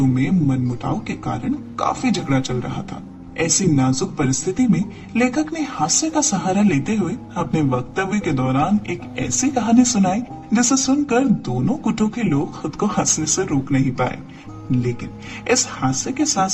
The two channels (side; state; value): both; identical; correlation 1.00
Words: में मनमुटाव के कारण काफी झगड़ा चल रहा था। ऐसी नाजुक परिस्थिति में लेखक ने हास्य का सहारा लेते हुए अपने वक्तव्य के दौरान एक ऐसी कहानी सुनाई जिसे सुनकर दोनों गुटों के लोग खुद को हंसने से रोक नहीं पाए। लेकिन इस हास्य के साथ